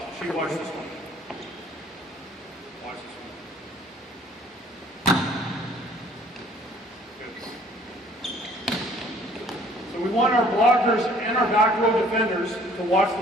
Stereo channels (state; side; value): normal; both; correlation 0.56